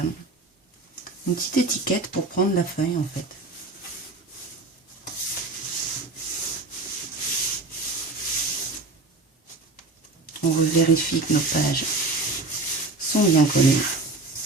une petite étiquette pour prendre la feuille en fait. On vérifie que nos pages sont bien collées.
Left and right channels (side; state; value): left; quieter; 3.2 dB